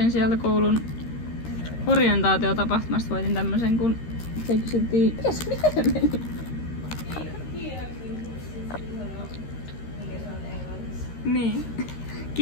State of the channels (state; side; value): late; right; 13 ms